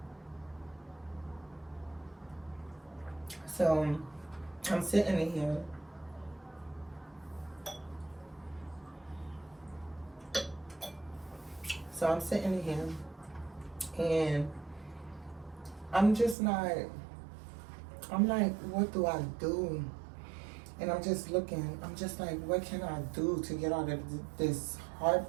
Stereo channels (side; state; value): left; drops out; at 16.4 s